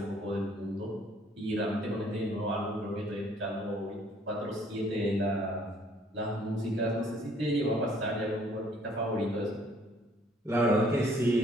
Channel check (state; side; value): normal; both; correlation 0.61